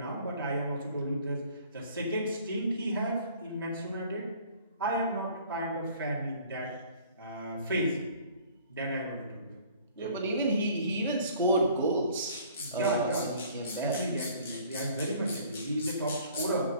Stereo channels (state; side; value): inverted; both; correlation -0.53